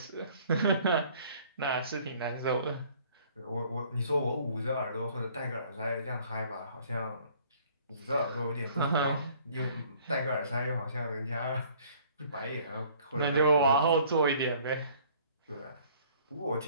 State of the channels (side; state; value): both; inverted; correlation -0.56